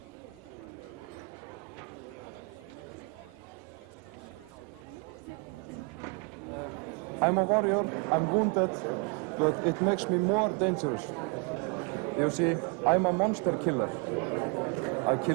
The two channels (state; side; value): quieter; left; 33.4 dB